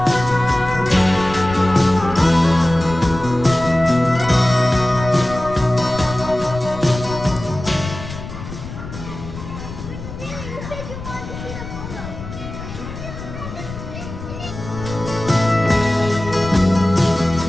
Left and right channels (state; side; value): noise; left; rumble, 10 dB below the sound